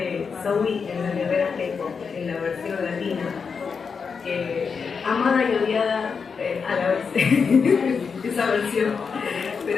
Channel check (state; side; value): quieter; right; 5.7 dB